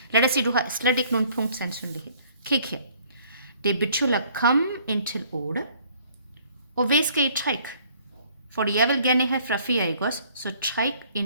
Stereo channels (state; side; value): inverted; both; correlation -0.59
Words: Lad os sige, du har slet ikke nogen punktsandsynlighed. Kig her. Det betyder, kom ind til 8. Og hvad skal I trække? Fordi jeg vil gerne have fra 4, ikke også? Så træk